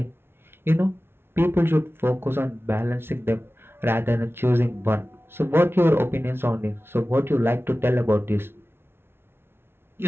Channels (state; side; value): late; left; 0.11 ms